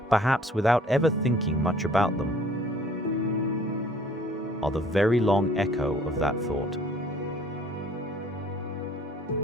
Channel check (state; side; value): normal; both; correlation 0.55